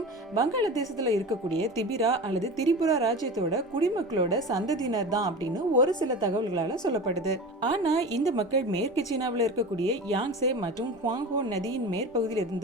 வங்காளதேசத்துல இருக்கக்கூடிய திபிரா அல்லது திரிபுரா ராஜ்யத்தோட குடிமக்களோட சந்ததியினர் தான் அப்படின்னு ஒரு சில தகவல்களால சொல்லப்படுது. ஆனா இந்த மக்கள் மேற்கு சீனாவில் இருக்கக்கூடிய யாங்சே மற்றும் ஹுவாங்ஹோ நதியின் மேற்பகுதியில்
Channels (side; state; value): both; normal; correlation 0.31